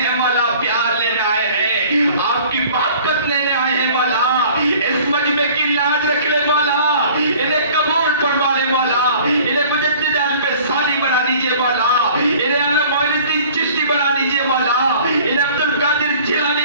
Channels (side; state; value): both; inverted; correlation -0.49